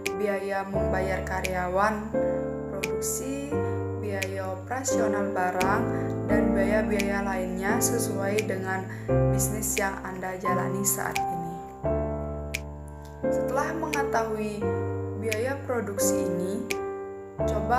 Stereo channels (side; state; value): both; identical; correlation 1.00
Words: biaya membayar karyawan produksi, biaya operasional barang, dan biaya-biaya lainnya sesuai dengan bisnis yang Anda jalani saat ini. Setelah mengetahui biaya produksi ini,